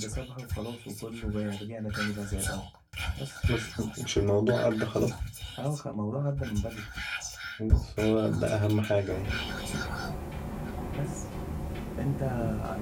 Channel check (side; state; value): both; identical; correlation 1.00